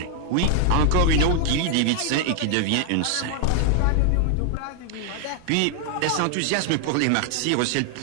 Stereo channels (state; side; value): different; both; correlation 0.00